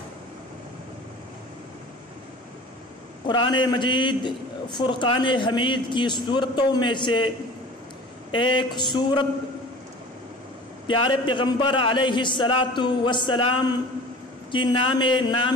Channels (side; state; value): both; normal; correlation 0.41